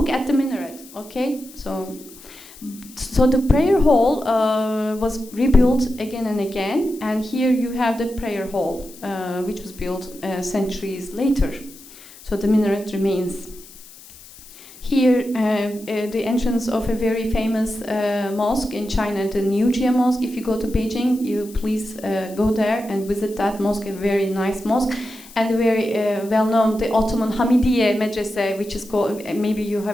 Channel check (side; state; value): left; noise; hiss, 20 dB below the sound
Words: at the minaret, okay? So the prayer hall was rebuilt again and again, and here you have the prayer hall, which was built centuries later. So the minaret remains. Here, the entrance of a very famous mosque in China, the New Jia Mosque. If you go to Beijing, you please go there and visit that mosque, a very nice mosque. And very well-known, the Ottoman Hamidiye Medrese, which is called, maybe you